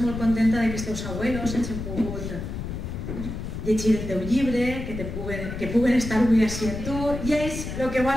molt contenta de que els teus abuelos hagin pogut llegir el teu llibre, que puguen estar avui així amb tu, i ells el que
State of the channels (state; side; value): noise; left; rumble, 6 dB below the sound